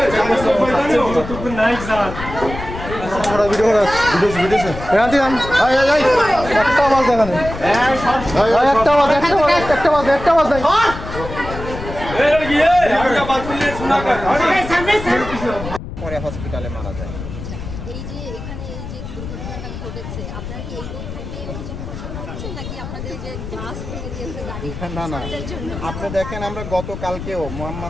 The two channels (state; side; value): noise; left; rumble, 9 dB below the sound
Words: তুই নাই স্যার আমরা ভিডিও করা ভিডিও রাতে আন আয় আয় আয় একটা আওয়াজ দেখা নেই একটা আওয়াজ নাই এই গিয়ে একটা বাত করলে শোনা কর পরে হসপিটালে মারা যায়। এই যে এখানে এই যে দুর্ঘটনাটা ঘটেছে আপনারা কি এই থেকে অভিযোগ করছেন নাকি আপনাদের যে গ্লাস ভেঙে দিয়েছে গাড়ি না না আপনি দেখেন আমরা গতকালকেও